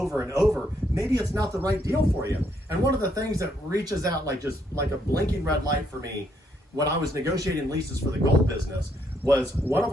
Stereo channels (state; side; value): normal; both; correlation 0.73